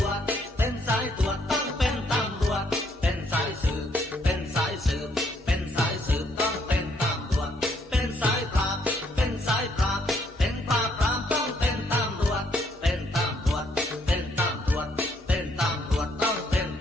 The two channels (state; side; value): normal; both; correlation 0.70